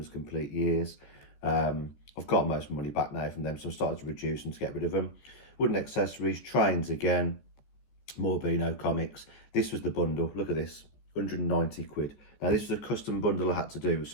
as complete years. I've got most of my money back now from them, so I'm starting to reduce them to get rid of them. Wooden accessories, trains again, more Beano comics. This was the bundle. Look at this, 190 quid. Now, this was a custom bundle I had to do with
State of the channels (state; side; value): late; right; 14 ms